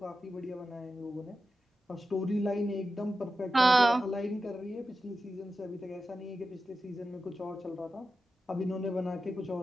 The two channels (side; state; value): both; normal; correlation 0.91